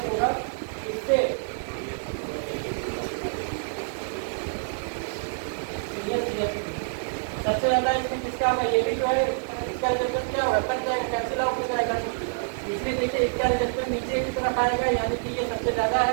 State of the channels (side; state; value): left; silent; 60 dB below the other